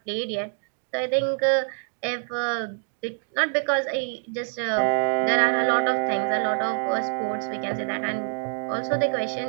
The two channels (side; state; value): left; silent; 61 dB below the other